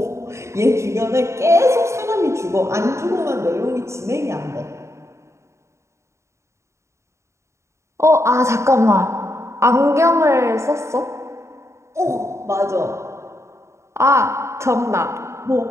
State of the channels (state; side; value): late; left; 0.14 ms